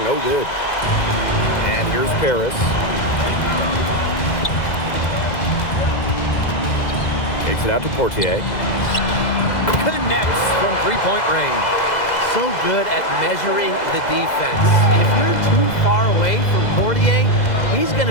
no good. And here's Paris. Takes it out to Portier. Connects from three-point range. So good at measuring the defense. If you're too far away from Portier, he's going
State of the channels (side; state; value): right; late; 2.0 ms